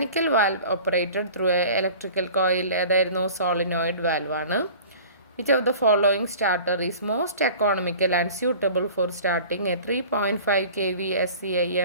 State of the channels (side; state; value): both; inverted; correlation -0.43